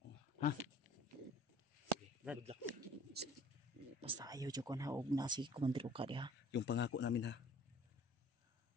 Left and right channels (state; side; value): normal; both; correlation 0.50